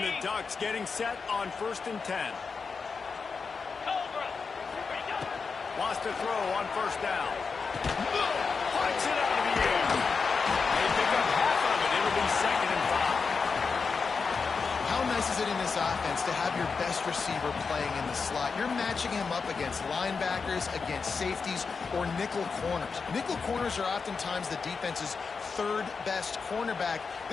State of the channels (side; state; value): right; quieter; 5.1 dB